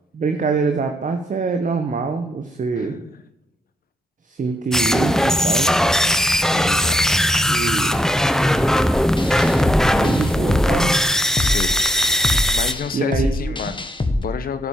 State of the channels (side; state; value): both; normal; correlation 0.76